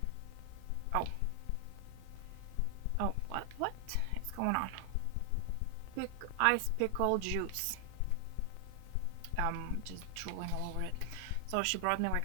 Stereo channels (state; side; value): different; both; correlation 0.00